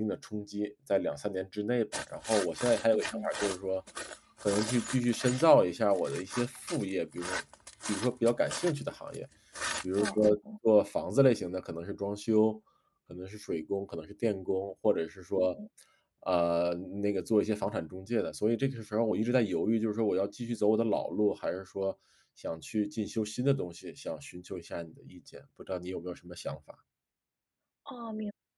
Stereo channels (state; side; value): identical; both; correlation 1.00